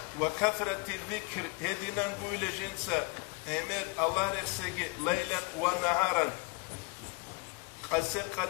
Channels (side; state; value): right; quieter; 27.2 dB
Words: وكثرة الذكر هدينا نقول جنسا أمر الله رسجي ليلا ونهارا قسق